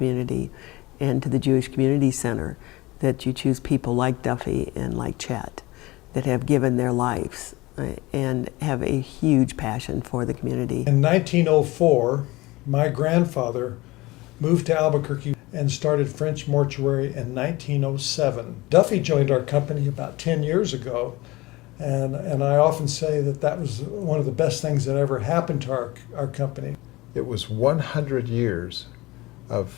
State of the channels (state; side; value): quieter; right; 20.8 dB